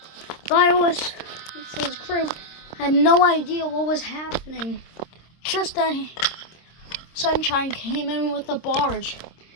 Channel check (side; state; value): right; late; 26 ms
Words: The IOS's crew had no idea what was happening. Just then, Sunshine came in with a barge.